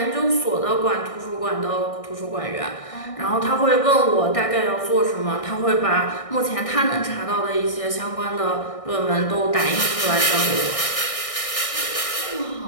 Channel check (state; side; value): late; right; 1.6 ms